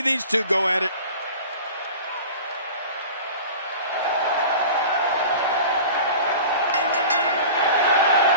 these two go at it.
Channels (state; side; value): inverted; both; correlation -0.38